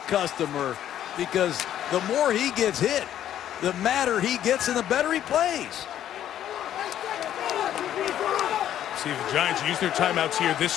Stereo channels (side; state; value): right; quieter; 11.2 dB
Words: customer because the more he gets hit, the madder he gets and the better he plays. See if the Giants use their timeouts here this